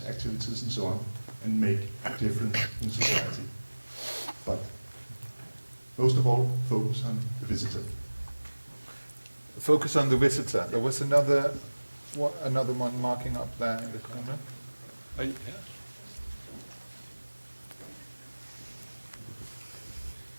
activities, and so on, and make a difference in society. But most of all, focus on the visitor. Focus on the visitor. There was another one marking up there in the corner.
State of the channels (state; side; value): inverted; both; correlation -1.00